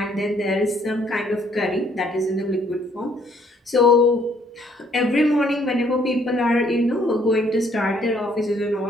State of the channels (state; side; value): normal; both; correlation 0.65